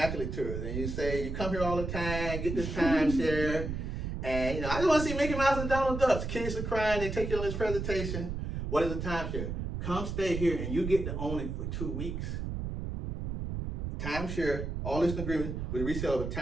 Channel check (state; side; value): noise; right; rumble, 4 dB below the sound